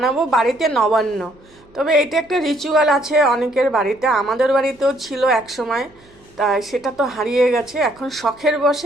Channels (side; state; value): right; noise; hum, 29 dB below the sound